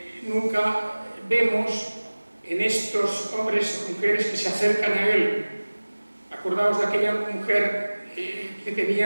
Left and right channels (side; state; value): both; inverted; correlation -1.00